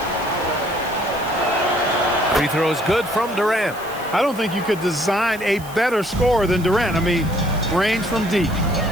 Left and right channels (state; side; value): noise; right; hiss, 18 dB below the sound